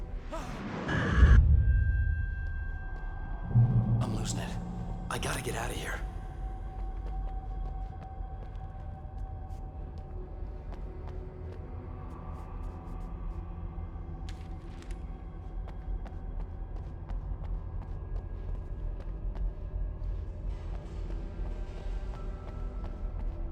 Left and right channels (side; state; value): both; identical; correlation 1.00